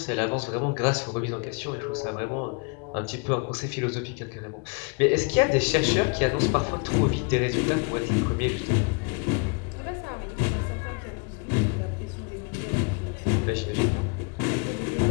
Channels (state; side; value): quieter; right; 33.2 dB